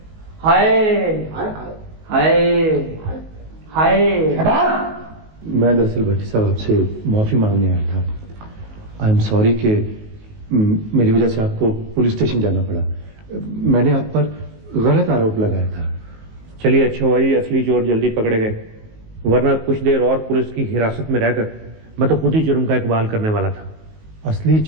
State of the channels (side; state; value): left; late; 19 ms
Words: हाय हाय हाय। मैं दरअसल भट्टी साहब आपसे माफी मांगने आया था। आई एम सॉरी कि मेरी वजह से आपको पुलिस स्टेशन जाना पड़ा। मैंने आप पर गलत आरोप लगाया था। चलिए अच्छा हुआ जी, असली चोर जल्दी पकड़े गए, वरना कुछ देर और पुलिस की हिरासत में रहकर मैं तो खुद ही जुर्म का इकबाल करने वाला था। असली